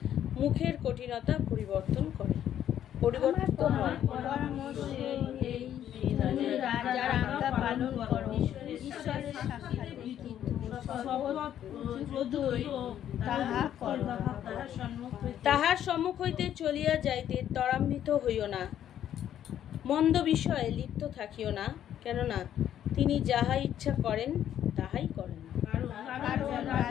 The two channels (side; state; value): right; quieter; 10.6 dB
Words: মুখের কঠিনতা পরিবর্তন করে, পরিবর্তিত হয়। পরামর্শে এই তুমি রাজার আজ্ঞা পালন করো, ঈশ্বরের সাক্ষাৎ তাহা করো। তাহার সম্মুখ হইতে চলিয়া যাইতে ত্বরান্বিত হইও না, মন্দ বিষয়ে লিপ্ত থাকিও না, কেননা তিনি যাহা ইচ্ছা করেন তাহাই করেন। কারণ